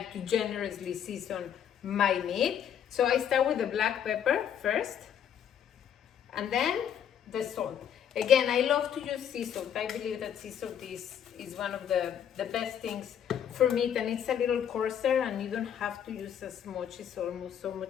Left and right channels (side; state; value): right; quieter; 9.1 dB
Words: to generously season my meat. So I start with the black pepper first, and then the salt. Again, I love to use sea salt. I believe that sea salt is one of the best things for meat, and it's a little coarser and you don't have to use as much. It's almost so